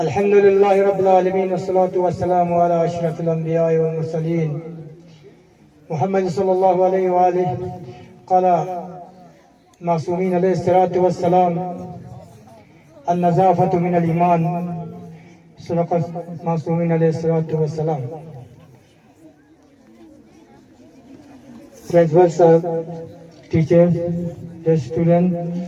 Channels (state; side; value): identical; both; correlation 1.00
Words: لله رب العالمين والصلاة والسلام على أشرف الأنبياء والمرسلين محمد صلى الله عليه وآله. قال معصومين عليه الصلاة والسلام النظافة من الإيمان. صدق معصومين عليه الصلاة والسلام. Principal sir, teachers, the students,